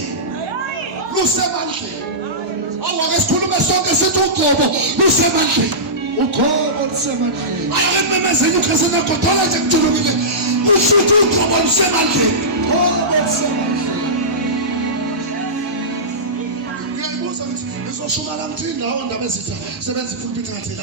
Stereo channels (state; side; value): normal; both; correlation -0.17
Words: Lusemandleni. Awake sikhulume sonke sithi ugcobo lusemandleni. Ugcobo lusemandleni. Ayakememezeni ukhesena godola nje kujulukile. Usithi ugcobo lusemandleni. Ugcobo lusemandleni. Ngiyayibuza ukuthi ngizoshuma la mthi indawo ndaba ezitha sebenza ipulpit ngathi